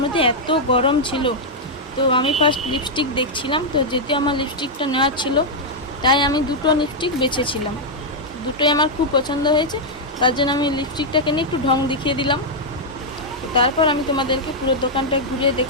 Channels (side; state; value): both; normal; correlation -0.03